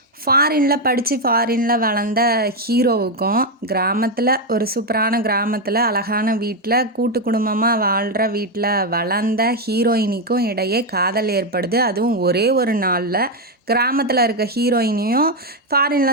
ஃபாரினில் படித்து ஃபாரினில் வளர்ந்த ஹீரோவுக்கும் கிராமத்தில் ஒரு சூப்பரான கிராமத்தில் அழகான வீட்டில் கூட்டு குடும்பமாக வாழ்கிற வீட்டில் வளர்ந்த ஹீரோயினிக்கும் இடையே காதல் ஏற்படுது. அதுவும் ஒரே ஒரு நாளில். கிராமத்தில் இருக்க ஹீரோயினையும்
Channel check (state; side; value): normal; both; correlation 0.05